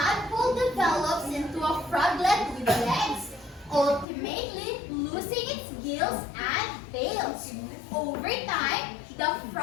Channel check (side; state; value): right; drops out; at 4.0 s